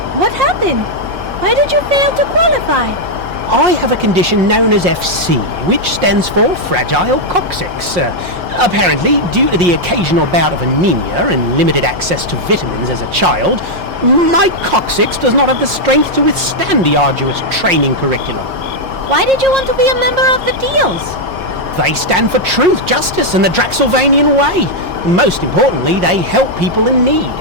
What happened? Why did you fail to qualify? I have a condition known as FC, which stands for Fragile Coccyx. Apparently, due to the occasional bout of anemia and limited access to vitamins as a child, my coccyx does not have the strength to withstand the arduous training curriculum. Why did you want to be a member of the Deals? They stand for truth, justice, and the Draxylvanian way. Most importantly, they help people in need.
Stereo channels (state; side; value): late; left; 5.6 ms